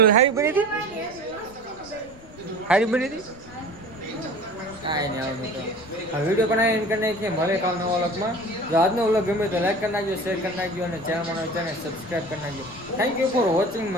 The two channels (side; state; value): left; noise; rumble, 22 dB below the sound